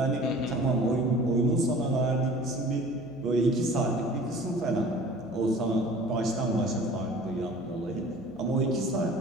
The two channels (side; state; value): left; noise; hum, 24 dB below the sound